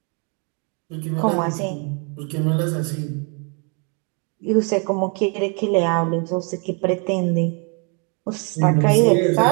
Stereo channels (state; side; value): quieter; left; 36.7 dB